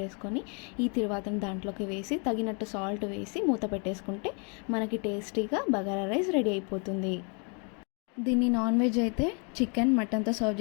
వేసుకొని ఈ తిరువాతను దాంట్లోకి వేసి తగినట్టు సాల్ట్ వేసి మూత పెట్టేసుకుంటే మనకి టేస్టీగా బగారా రైస్ రెడీ అయిపోతుంది. దీన్ని నాన్ వెజ్ అయితే చికెన్ మటన్తో సర్వ్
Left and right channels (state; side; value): quieter; right; 36.8 dB